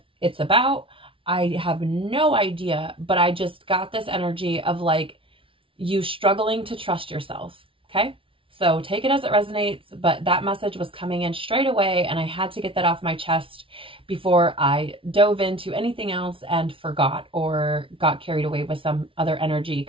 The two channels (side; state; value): left; late; 0.25 ms